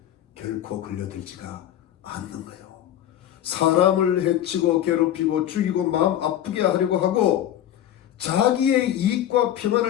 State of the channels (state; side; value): quieter; right; 11.6 dB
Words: 결코 걸려들지가 않는 거예요. 사람을 해치고 괴롭히고 죽이고 마음 아프게 하려고 하고 자기의 이익과